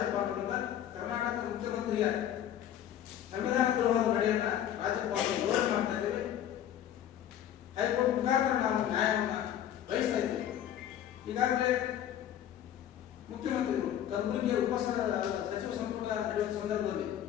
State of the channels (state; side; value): quieter; right; 10.9 dB